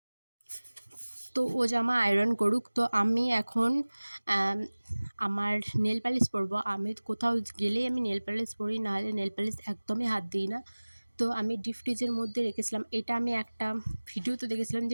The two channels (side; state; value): both; inverted; correlation -1.00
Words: তো ও জামা আয়রন করুক। তো আমি এখন আমার নেল পালিশ পরবো। আমি কোথাও গেলেই আমি নেল পালিশ পরি, নাহলে নেল পালিশ একদমই হাত দিই না। তো আমি ডিপ ফ্রিজের মধ্যে রেখেছিলাম। এটা আমি একটা ভিডিওতে দেখেছিলাম